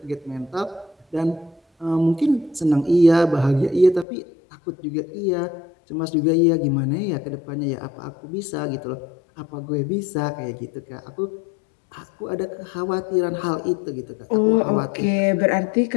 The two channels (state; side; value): drops out; right; at 4.0 s